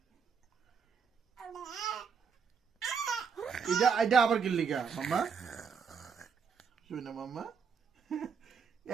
এটা এটা আবার কিনলি গা মাম্মা? শুনে মাম্মা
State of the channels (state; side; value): quieter; left; 6.2 dB